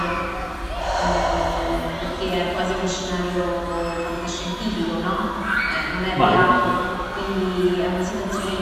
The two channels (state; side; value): identical; both; correlation 1.00